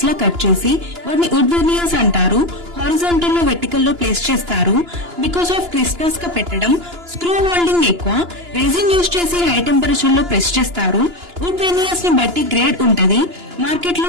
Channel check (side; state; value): left; late; 2.9 ms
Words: లా కట్ చేసి వాటిని వుడ్ వెనియర్స్ అంటారు. హారిజాంటల్ లో వెర్టికల్ లో ప్లేస్ చేస్తారు. బికాస్ ఆఫ్ క్రిస్టల్స్ గా పెట్టడం, స్క్రూ హోల్డింగ్ ఎక్కువ, రెజిన్ యూజ్ చేసి హై టెంపరేచర్ లో ప్రెస్ చేస్తారు. వుడ్ వెనియర్స్ ని బట్టి గ్రేడ్ ఉంటది. మార్కెట్